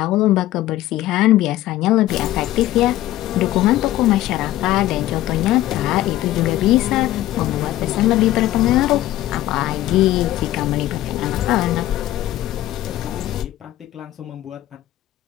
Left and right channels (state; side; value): quieter; right; 14.6 dB